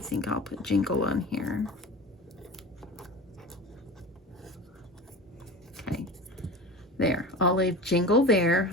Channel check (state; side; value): normal; both; correlation 0.33